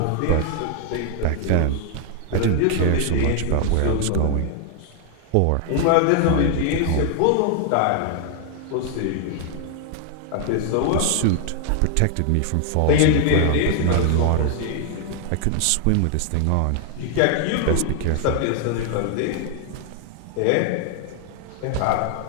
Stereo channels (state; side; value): different; both; correlation 0.00